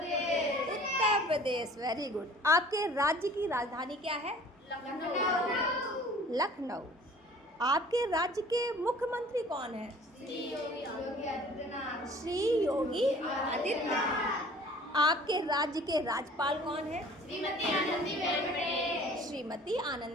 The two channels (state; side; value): normal; both; correlation 0.49